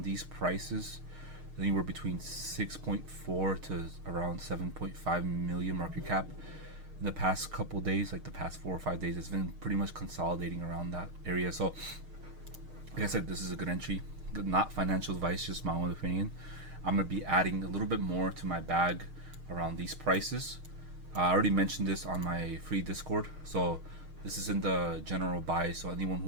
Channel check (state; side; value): late; left; 6.5 ms